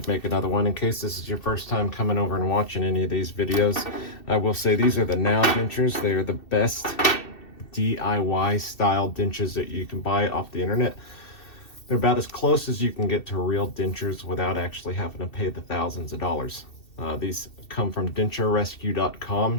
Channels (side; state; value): right; late; 2.7 ms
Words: make another one in case this is your first time coming over and watching any of these videos. I will say these are the Now Dentures. They are the best DIY style dentures that you can buy off the internet. They're about as close as you can get to real dentures without actually having to pay the thousands of dollars. These come from